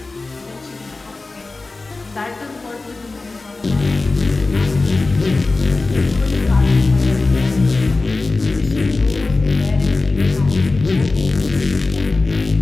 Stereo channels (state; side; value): quieter; right; 3.5 dB